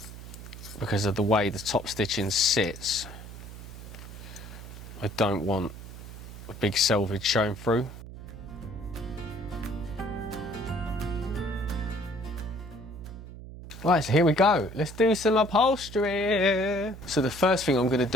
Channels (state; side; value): noise; right; hum, 13 dB below the sound